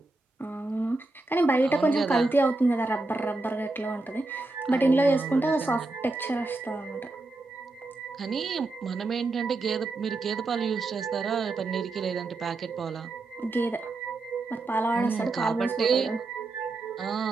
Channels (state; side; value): quieter; left; 3.2 dB